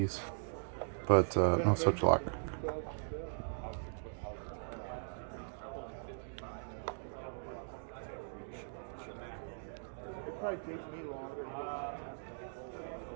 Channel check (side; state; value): left; silent; digital silence